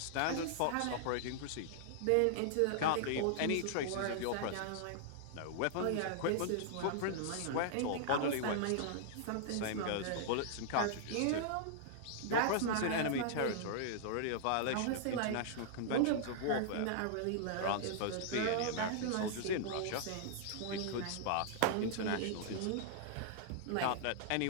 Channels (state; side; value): different; both; correlation -0.01